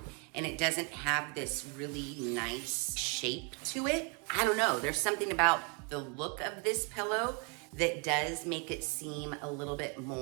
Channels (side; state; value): left; quieter; 34.1 dB